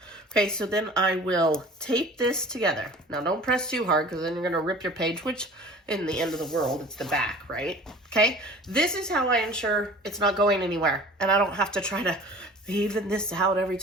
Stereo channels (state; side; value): normal; both; correlation 0.44